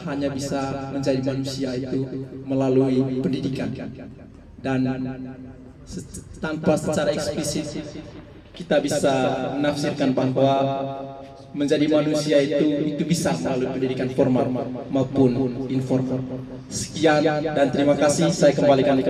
hanya bisa menjadi manusia itu melalui pendidikan, dan tanpa secara eksplisit kita bisa menafsirkan bahwa menjadi manusia itu bisa melalui pendidikan formal maupun informal. Sekian dan terima kasih. Saya kembalikan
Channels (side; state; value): both; identical; correlation 1.00